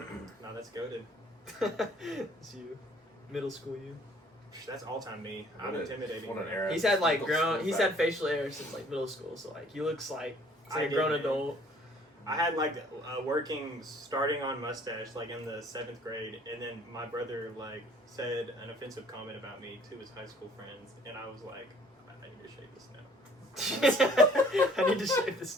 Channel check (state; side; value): normal; both; correlation 0.57